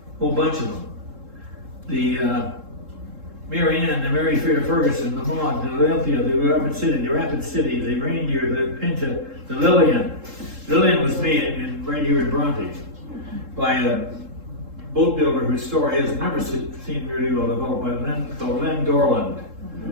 whole bunch of them. The Mary Ann, the Mary Fair Ferguson, the Maud, the Olympia, the Rapid City, the Reindeer, the Pinta, the Lillian. Lillian was made right here in Bronte by a boat builder whose story has never seen really well developed, by Len Dorland.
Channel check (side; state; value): left; late; 3.7 ms